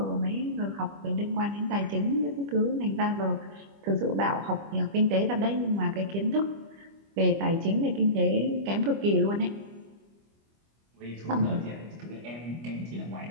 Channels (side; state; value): left; late; 25 ms